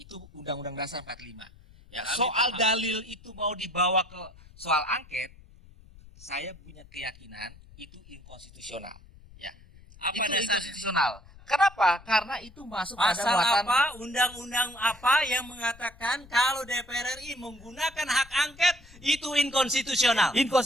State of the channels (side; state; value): left; noise; rumble, 22 dB below the sound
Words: Undang-Undang Dasar 45. Ya, soal dalil itu mau dibawa ke soal angket, saya punya keyakinan itu inkonstitusional. Ya. Apa Itu dasarnya? inkonstitusional. Kenapa? Karena itu masuk pada Pasal muatan apa, undang-undang apa yang mengatakan kalau DPR RI menggunakan hak angket itu inkonstitusional?